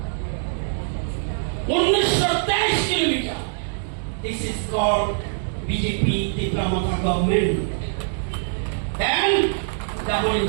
1923 kilometre. This is called BJP Tripura government and double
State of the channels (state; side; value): silent; left; digital silence